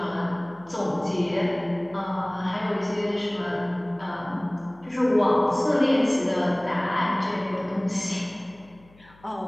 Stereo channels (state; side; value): noise; left; hum, 27 dB below the sound